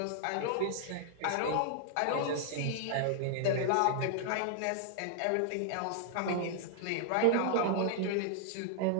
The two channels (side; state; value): both; different; correlation 0.00